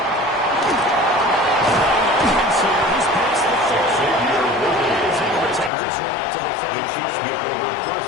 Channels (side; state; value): right; drops out; at 5.7 s